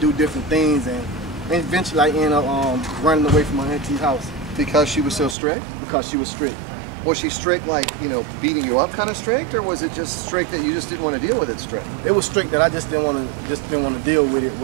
different things, and eventually I ended up running away from my auntie's house. Because she was so strict? Because she was strict. Was she strict, like, you know, beating you up kind of strict, or was it just strict that you just didn't want to deal with it strict? It was strict that I just didn't want to deal with it,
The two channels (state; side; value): drops out; left; at 5.4 s